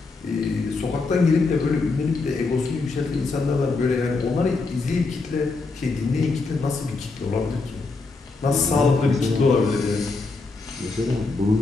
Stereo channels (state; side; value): quieter; right; 3.9 dB